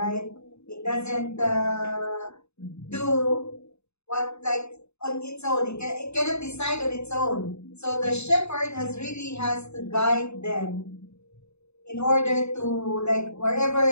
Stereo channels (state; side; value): late; right; 0.80 ms